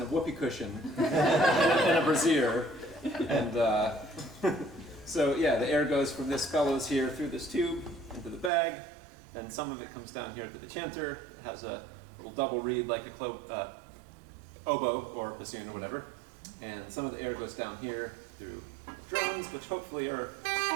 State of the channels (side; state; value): left; drops out; at 8.5 s